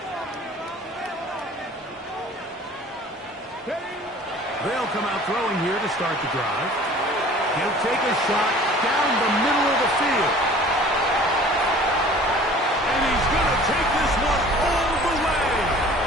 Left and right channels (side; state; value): both; normal; correlation 0.47